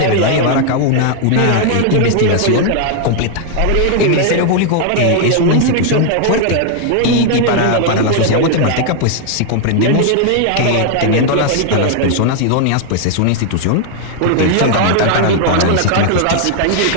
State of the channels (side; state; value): both; different; correlation 0.00